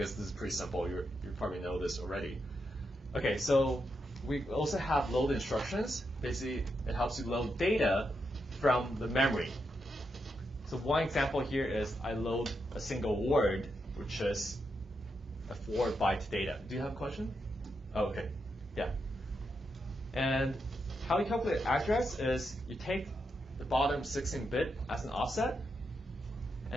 this is pretty simple. You probably know this already. Okay, so we also have load instructions. Basically, it helps you load data from the memory. So one example here is I load a single word, which is a 4-byte data. Do you have a question? Oh, okay. Yeah. And how you calculate address is you take the bottom 16-bit as an offset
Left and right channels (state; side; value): normal; both; correlation 0.84